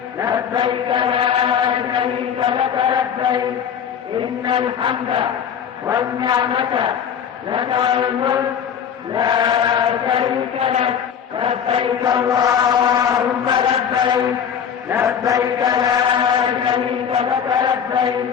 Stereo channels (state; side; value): quieter; right; 8.1 dB